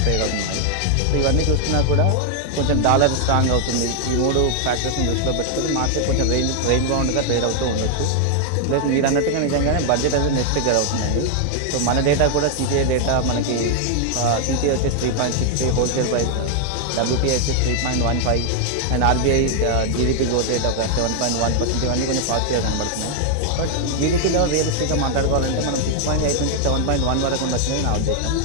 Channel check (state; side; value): different; both; correlation 0.00